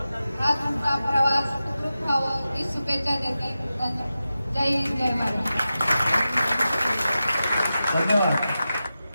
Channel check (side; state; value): both; inverted; correlation -0.93